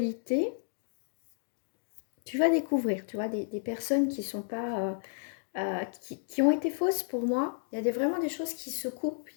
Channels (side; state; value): right; silent; digital silence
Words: tu vas découvrir. Tu vois, des personnes qui sont pas... qui ont été fausses pour moi. Il y a vraiment des choses qui se coupent.